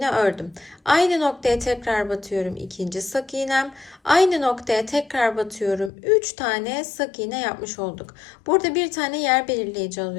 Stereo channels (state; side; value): drops out; right; at 5.9 s